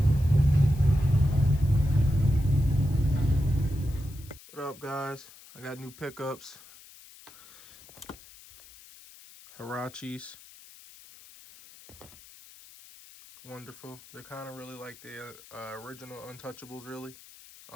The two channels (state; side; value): noise; left; hiss, 21 dB below the sound